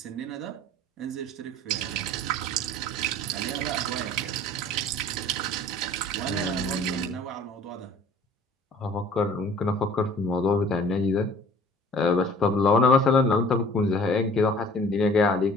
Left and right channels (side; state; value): both; normal; correlation 0.50